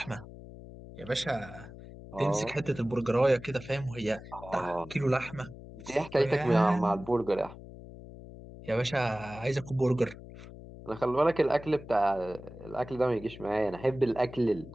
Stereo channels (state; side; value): noise; left; hum, 15 dB below the sound